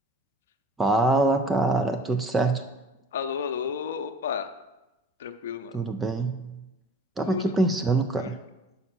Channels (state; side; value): normal; both; correlation 0.48